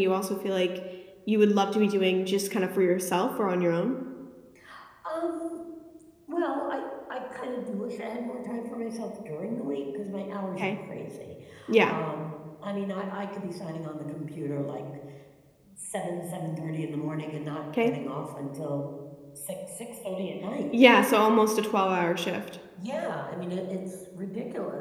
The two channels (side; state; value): both; identical; correlation 1.00